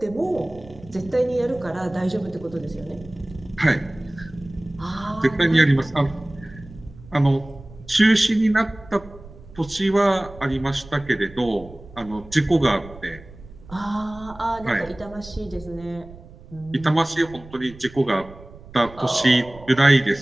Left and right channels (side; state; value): right; noise; rumble, 19 dB below the sound